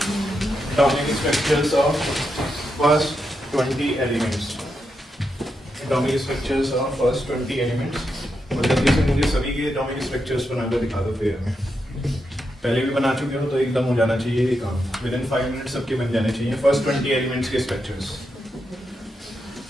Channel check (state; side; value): normal; both; correlation 0.85